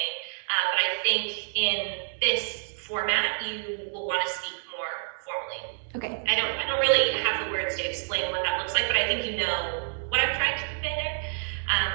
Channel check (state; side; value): silent; left; digital silence